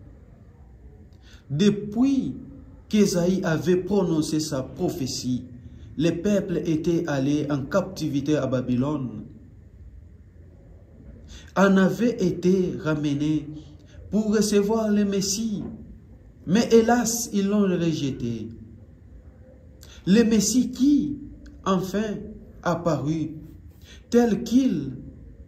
Depuis qu'Ésaïe avait prononcé sa prophétie, les peuples étaient allés en captivité à Babylone, en avaient été ramenés pour recevoir le Messie, mais hélas, ils l'ont rejeté. Le Messie qui, enfin, apparut, tel qu'ils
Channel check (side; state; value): both; identical; correlation 1.00